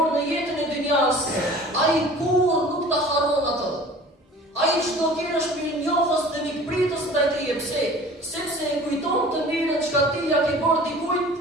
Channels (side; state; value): both; normal; correlation 0.44